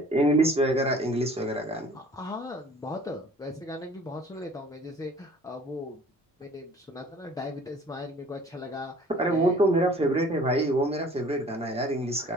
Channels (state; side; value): normal; both; correlation 0.50